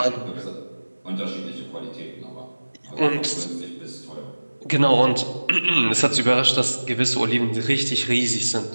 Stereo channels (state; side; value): inverted; both; correlation -1.00